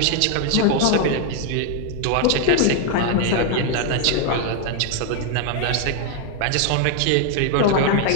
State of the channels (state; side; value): different; both; correlation 0.00